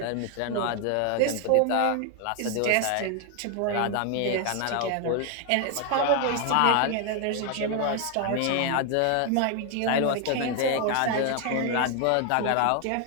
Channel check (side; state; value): both; different; correlation 0.01